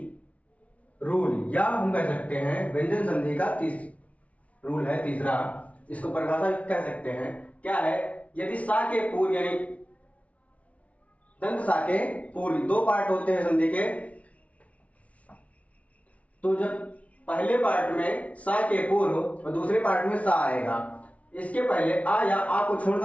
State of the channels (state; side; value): late; right; 0.066 ms